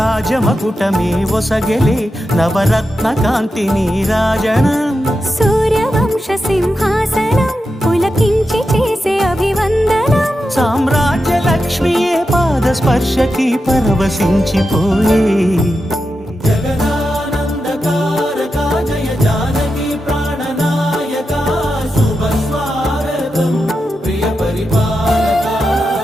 రాజమకుటమే ఒసగెలే నవరత్న కాంతి నీరాజనం సూర్యవంశ సింహాసనం పులకించి చేసే అభివందనం సామ్రాజ్య లక్ష్మియే పాద స్పర్శకి పరవశించిపోయే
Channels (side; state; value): both; normal; correlation 0.89